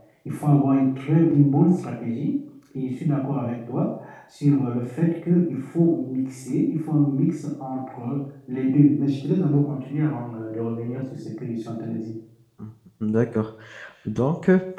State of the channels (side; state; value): both; identical; correlation 1.00